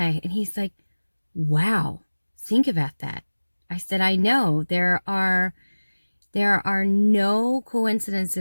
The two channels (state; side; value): inverted; both; correlation -1.00